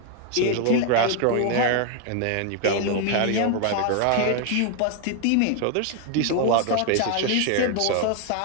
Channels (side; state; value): both; different; correlation 0.01